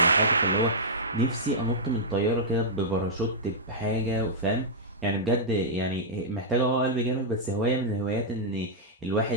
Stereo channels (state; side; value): normal; both; correlation -0.10